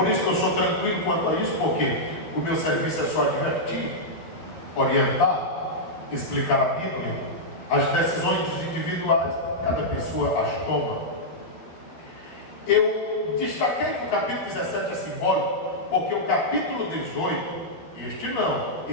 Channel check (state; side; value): late; right; 12 ms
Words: isso que eu sou tranquilo quanto a isso, porque o meu serviço é só advertir, orientar, explicar a Bíblia. As decisões individuais, cada pessoa as toma. Eu destaquei que o capítulo 17 é simbólico, porque o capítulo 18, este não,